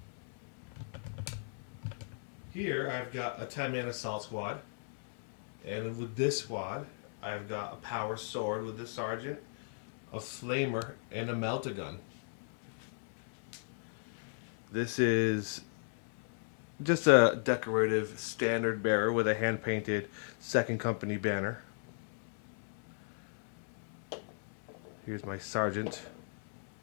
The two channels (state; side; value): silent; right; 54 dB below the other